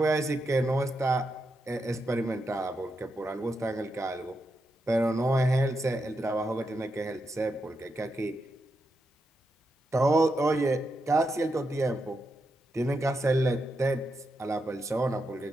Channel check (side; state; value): both; normal; correlation 0.85